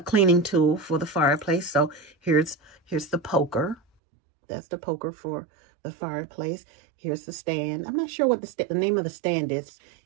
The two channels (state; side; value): drops out; left; at 3.8 s